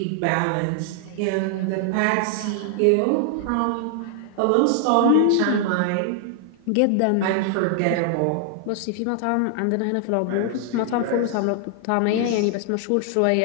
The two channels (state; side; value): different; both; correlation 0.00